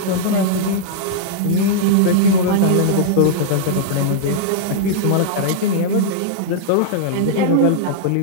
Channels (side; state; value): both; different; correlation -0.02